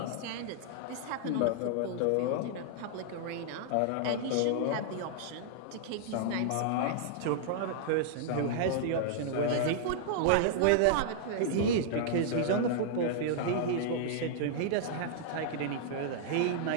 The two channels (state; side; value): different; both; correlation -0.01